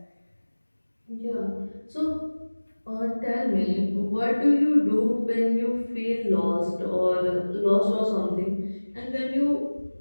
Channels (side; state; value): both; inverted; correlation -1.00